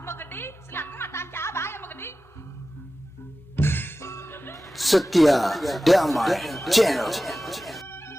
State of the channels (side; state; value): both; normal; correlation 0.95